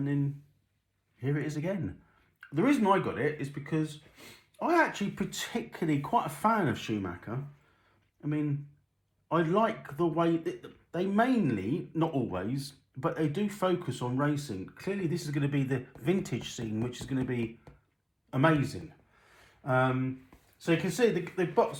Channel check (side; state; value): both; identical; correlation 1.00